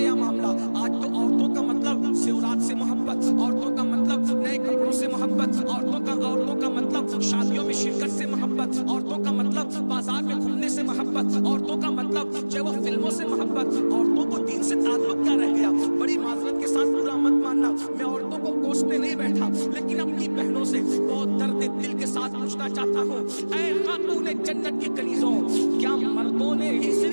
معاملہ؟ آج تو عورتوں کا مطلب زیورات سے محبت، عورتوں کا مطلب نئے کپڑوں سے محبت، عورتوں کا مطلب شادیوں میں شرکت سے محبت، عورتوں کا مطلب بازار میں گھومنے سے محبت، عورتوں کا مطلب جو وہ فلموں سے محبت۔ عورتوں کو دین سے تعلق کیا رہ گیا؟ بڑی معذرت کے ساتھ برا مت ماننا، میں عورتوں کو کوسنے نہیں بیٹھا، لیکن اپنی بہنوں سے بہت درد دل کے ساتھ پوچھنا چاہتا ہوں، اے خاتون جنت کی کنیزوں، کیا مردوں نے ہی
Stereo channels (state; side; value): inverted; both; correlation -1.00